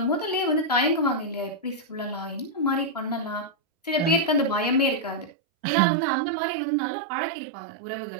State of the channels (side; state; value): left; drops out; at 5.3 s